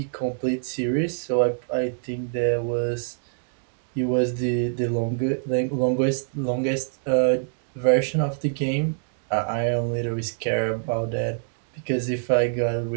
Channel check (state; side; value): silent; left; digital silence